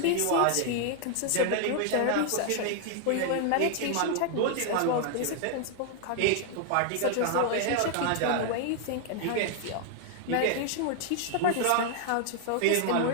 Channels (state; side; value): different; both; correlation 0.00